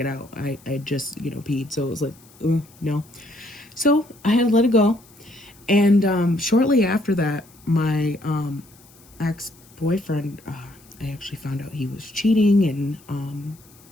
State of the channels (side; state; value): left; noise; hiss, 26 dB below the sound